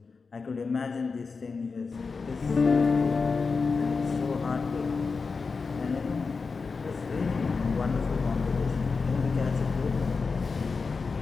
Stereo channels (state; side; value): quieter; right; 4.7 dB